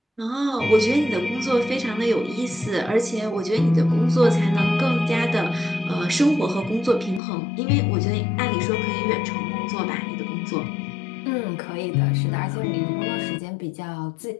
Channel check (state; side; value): drops out; right; at 7.2 s